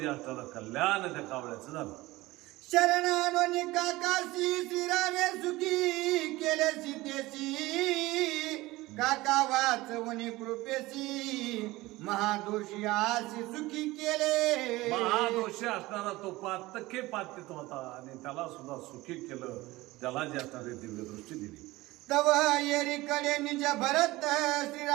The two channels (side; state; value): left; quieter; 19.4 dB